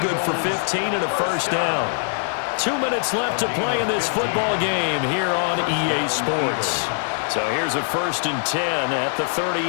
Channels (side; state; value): right; silent; 57 dB below the other